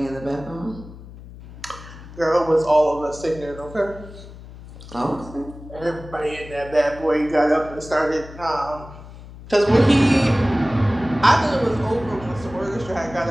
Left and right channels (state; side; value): noise; left; hum, 16 dB below the sound